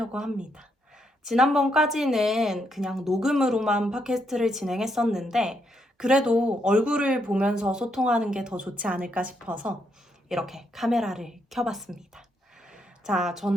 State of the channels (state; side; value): normal; both; correlation 0.77